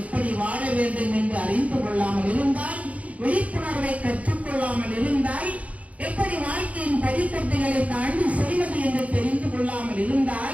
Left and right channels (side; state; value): left; late; 0.067 ms